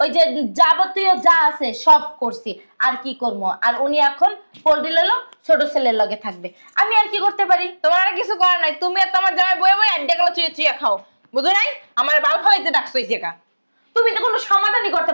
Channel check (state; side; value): inverted; both; correlation -1.00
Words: ওই যে যাবতীয় যা আছে সব করছি। আর কি করবো? আর উনি এখন পোল্ট্রি লইলো ছোট ছেলের লগে থাকবে, আমি আর কি করতে পারি? তোমার আর কিছু করার নাই। তুমি আর তোমার জামাই বয়ে বয়ে আড্ডে কালা চুয়ে চুয়ে খাও, বুঝো নাই? আমার বাল ফালাইতে ডাকছো এই জায়গা। তুমি তো কোনো সমাধানই করতে